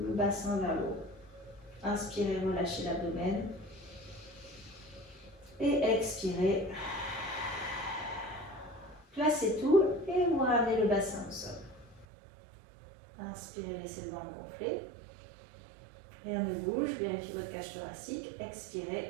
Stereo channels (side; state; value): left; drops out; at 12.1 s